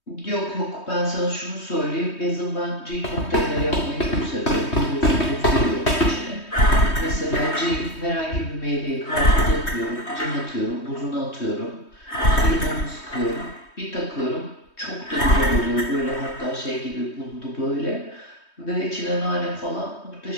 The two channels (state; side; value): late; right; 3.2 ms